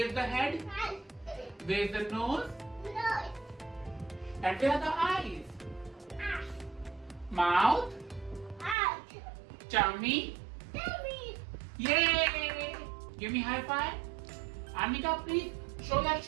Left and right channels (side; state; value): left; drops out; at 8.8 s